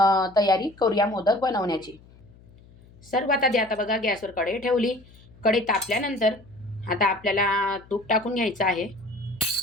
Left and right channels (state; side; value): noise; left; hum, 25 dB below the sound